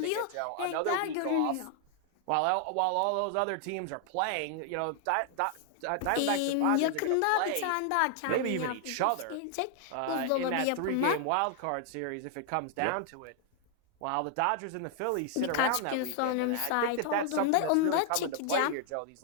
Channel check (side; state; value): both; different; correlation 0.00